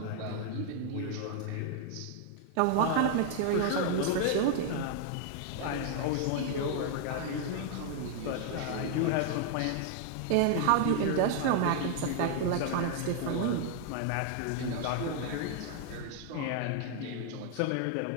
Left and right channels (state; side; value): different; both; correlation 0.00